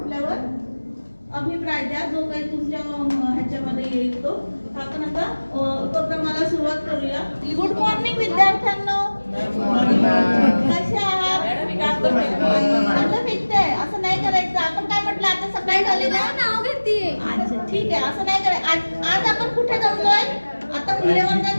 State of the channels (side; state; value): both; inverted; correlation -1.00